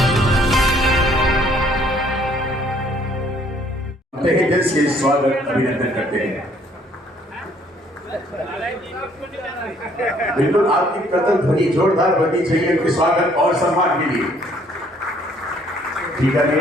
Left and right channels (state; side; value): normal; both; correlation 0.62